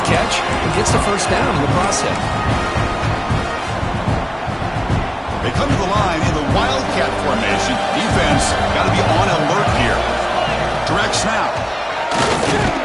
catch and gets the first down in the process. They come to the line in the Wildcat formation. Defense got to be on alert here. Direct snap.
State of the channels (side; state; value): both; identical; correlation 1.00